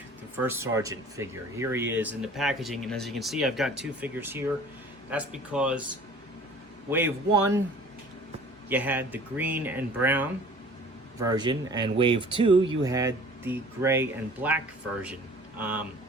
the first Sargent figure. Here he is in the packaging, and as you can see, I've got two figures here. That's because Wave 1, you had the green and brown version, and Wave 2, you had the gray and black version.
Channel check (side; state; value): both; normal; correlation 0.47